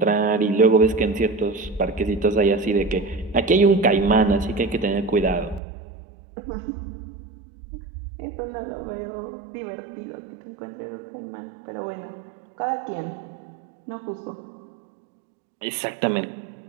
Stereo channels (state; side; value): drops out; left; at 5.6 s